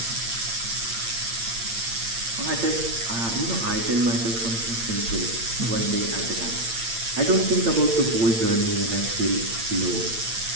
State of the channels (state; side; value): late; left; 8.8 ms